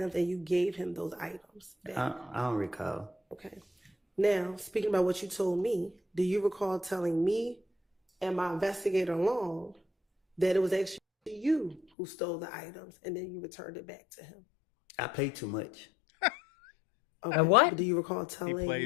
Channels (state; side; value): drops out; right; at 11.8 s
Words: and you gave him those items back? I don't recall. Okay. Now, speaking about what you told me, do you recall telling me and my investigator Long that it was actually you who stole the items and then you returned it back to him? I play too much. Okay. What? But do you recall telling